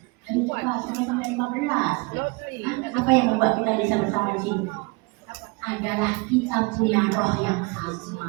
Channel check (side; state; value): left; quieter; 27.5 dB